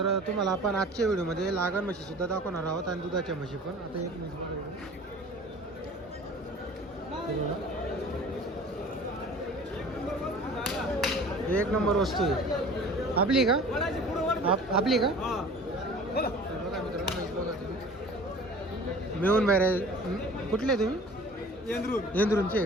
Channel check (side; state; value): both; normal; correlation 0.44